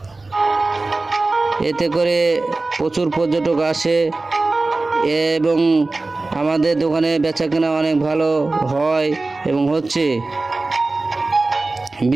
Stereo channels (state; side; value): quieter; left; 3.3 dB